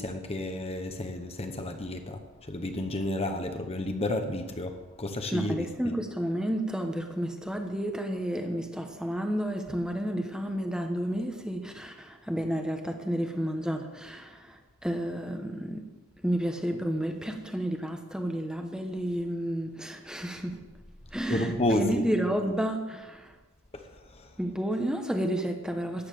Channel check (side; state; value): both; normal; correlation 0.80